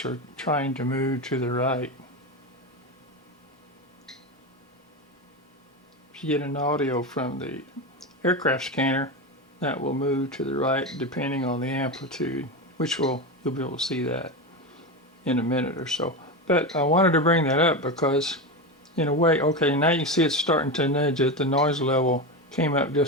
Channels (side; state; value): both; normal; correlation 0.18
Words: trying to move to the right. If you get an audio from the aircraft scanner, that will move to the right depending on the amplitude, which you'll be able to see that in a minute or so. But I wanted to bring that up because, in a way, okay, now you see it's starting to nudge it. The noise level came up